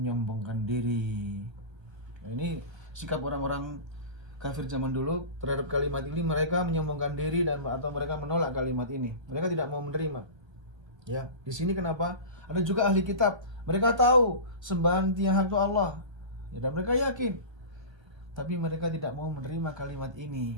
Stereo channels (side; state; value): left; late; 1.3 ms